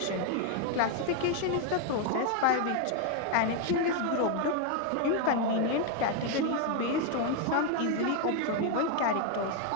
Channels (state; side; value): different; both; correlation 0.01